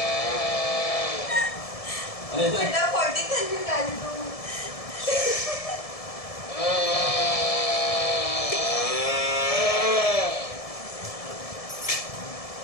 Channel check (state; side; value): late; right; 1.7 ms